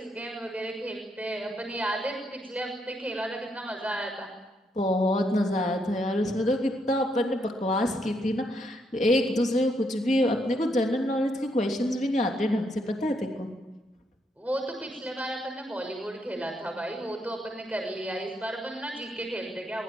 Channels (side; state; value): both; normal; correlation 0.76